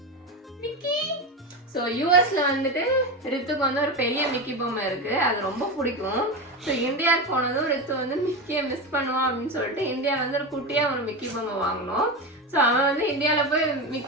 ஸோ யூஎஸ்ல வந்துட்டு ரித்துக்கு வந்து ஒரு பெரிய மிக்கி பொம்மை இருக்கு, அது ரொம்ப பிடிக்கும். ஸோ இந்தியாவுக்கு போனதும் ரித்து வந்து மிக்கியை மிஸ் பண்ணுவான் அப்படின்னு சொல்லிட்டு இந்தியா வந்து ஒரு குட்டியாக ஒரு மிக்கி பொம்மை வாங்கினோம். ஸோ அவன் வந்து இந்தியாவில் போய்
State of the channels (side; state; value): both; normal; correlation 0.19